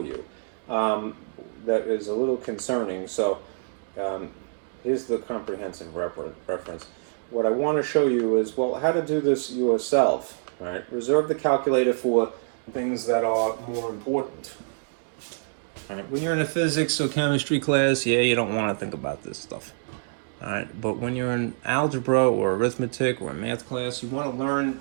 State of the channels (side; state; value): left; silent; digital silence